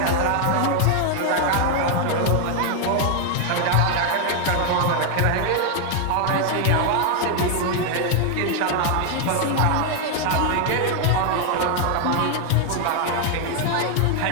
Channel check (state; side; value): different; both; correlation 0.00